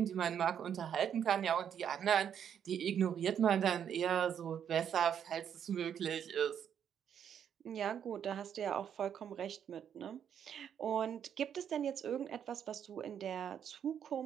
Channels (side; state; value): left; quieter; 8.7 dB